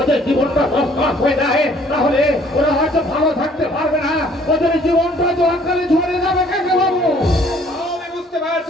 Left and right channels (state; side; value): normal; both; correlation 0.59